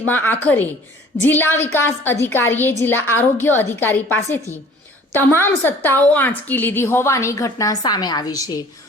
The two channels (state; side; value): normal; both; correlation 0.50